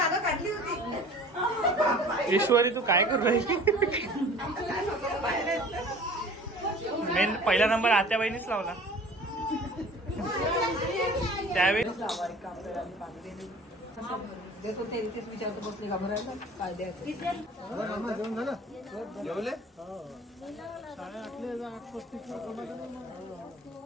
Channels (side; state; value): both; normal; correlation 0.45